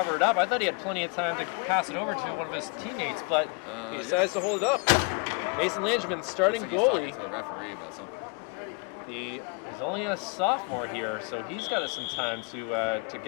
it up. I thought he had plenty of time to pass it over to one of his teammates, but he decides to hold it up. Mason Langevin, starting Looks goalie. like he's talking to the referee about something. He's only a sophomore here, so he's got some time to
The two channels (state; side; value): quieter; right; 33.3 dB